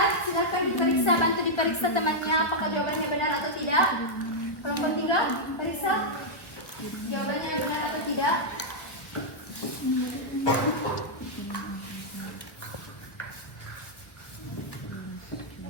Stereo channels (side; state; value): right; late; 1.3 ms